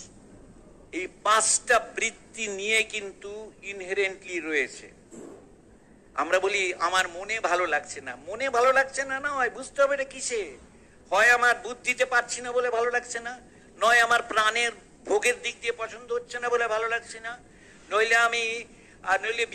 এই 5টা বৃত্তি নিয়ে কিন্তু ইনহেরেন্টলি রয়েছে। আমরা বলি আমার মনে ভালো লাগছে না, মনে ভালো লাগছে না, না হয় বুঝতে হবে এটা কিসে। হয় আমার বুদ্ধিতে পারছি না বলে ভালো লাগছে না, নয় আমার প্রাণের ভোগের দিক দিয়ে পছন্দ হচ্ছে না বলে ভালো লাগছে না, নইলে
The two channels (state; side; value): identical; both; correlation 1.00